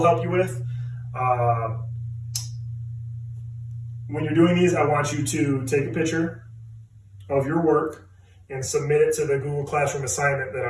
help you with. When you're doing these, I want you to take a picture of your work and submit it to the Google Classroom assignment that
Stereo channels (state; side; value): identical; both; correlation 1.00